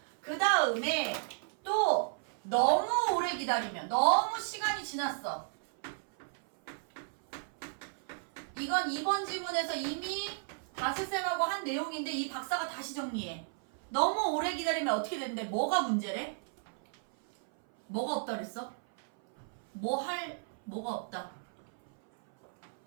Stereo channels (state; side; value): silent; left; 55 dB below the other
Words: 그 다음에 또 너무 오래 기다리면 너무 시간이 지났어. 이건 2번 지문에서 이미 다스쌤하고 한 내용인데 이 박사가 다시 정리해. 너무 오래 기다리면 어떻게 되는데 뭐가 문제래? 뭐가 없다 그랬어? 뭐가 없다.